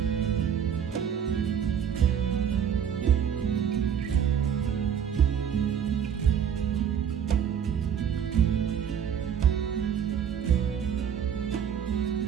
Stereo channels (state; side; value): quieter; left; 8.3 dB